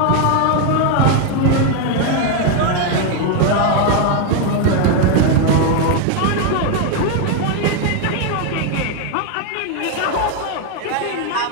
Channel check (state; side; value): different; both; correlation 0.01